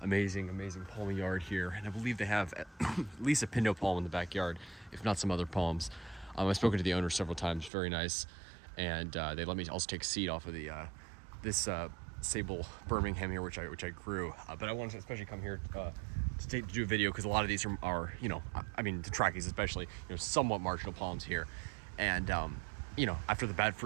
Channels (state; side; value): drops out; left; at 7.7 s